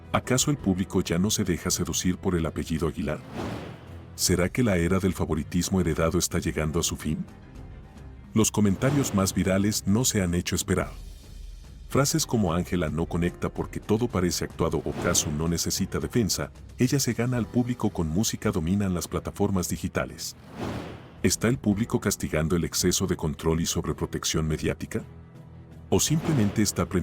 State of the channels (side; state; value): both; identical; correlation 1.00